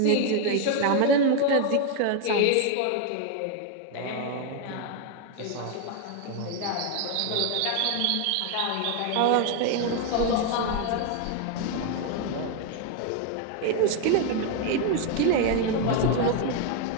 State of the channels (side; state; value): both; different; correlation 0.01